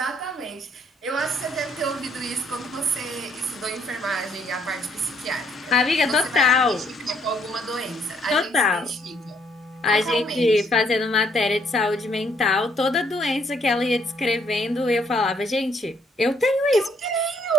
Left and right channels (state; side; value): normal; both; correlation 0.68